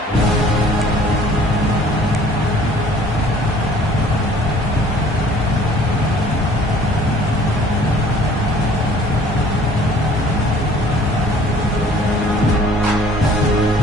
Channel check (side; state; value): both; normal; correlation 0.54